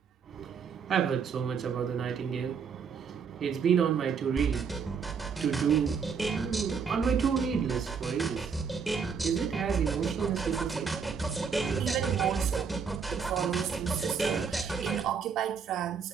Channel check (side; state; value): left; quieter; 6.1 dB